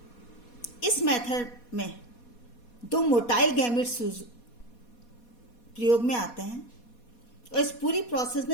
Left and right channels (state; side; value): late; right; 4.2 ms